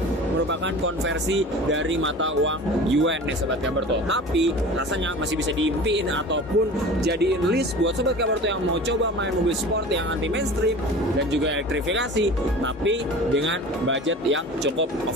merupakan konversi dari mata uang yuan nih Sobat Kabarto. Tapi rasanya masih bisa diimpiin ataupun jadiin list buat Sobat Kabarto yang mau coba main mobil sport yang anti mainstream dan juga elektrifikasi, tapi dengan budget yang cukup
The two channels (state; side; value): normal; both; correlation 0.38